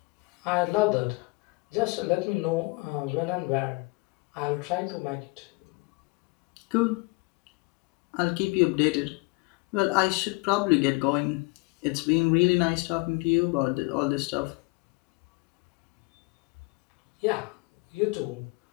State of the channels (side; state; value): right; quieter; 27.1 dB